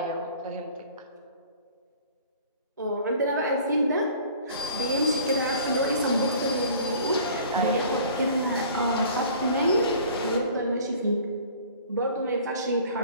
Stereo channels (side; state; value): both; inverted; correlation -0.48